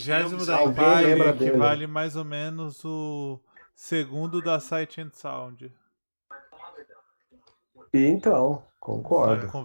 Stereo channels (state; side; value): inverted; both; correlation -1.00